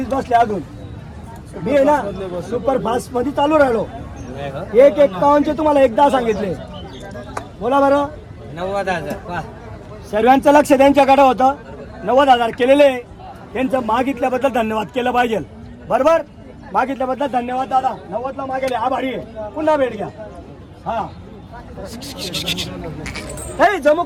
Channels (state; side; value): identical; both; correlation 1.00